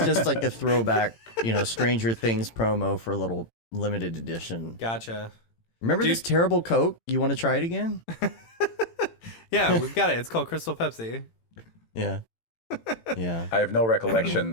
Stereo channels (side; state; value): right; late; 18 ms